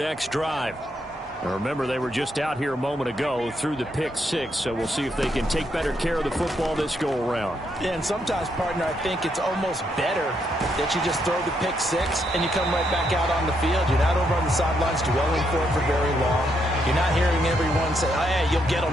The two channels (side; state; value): both; normal; correlation 0.77